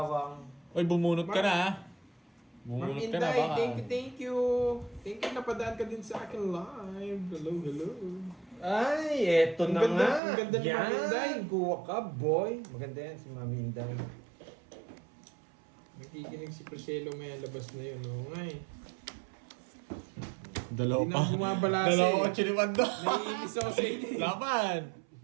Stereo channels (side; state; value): left; drops out; at 10.2 s